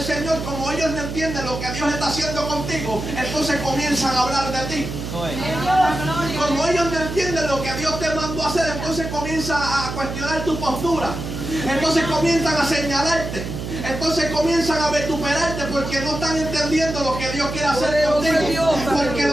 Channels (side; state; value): right; noise; hum, 6 dB below the sound